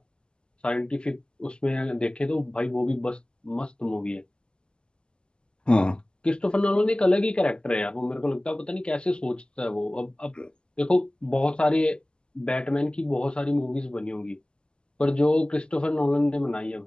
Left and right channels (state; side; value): late; right; 0.049 ms